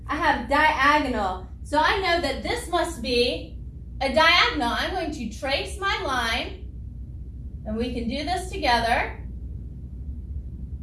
I have diagonal. So I know that this must be a diagonal. I'm going to trace my line, and we can do this together.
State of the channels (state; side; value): identical; both; correlation 1.00